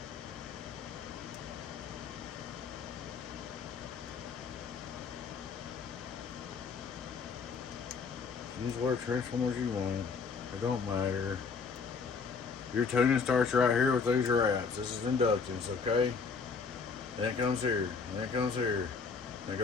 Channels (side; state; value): right; quieter; 5.3 dB